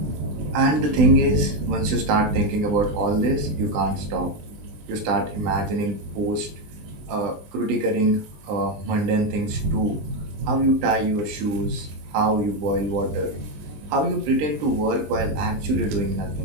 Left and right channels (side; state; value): left; late; 20 ms